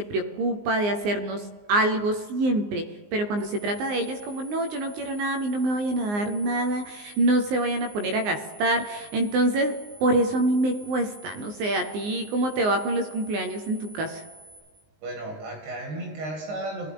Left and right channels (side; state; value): left; late; 19 ms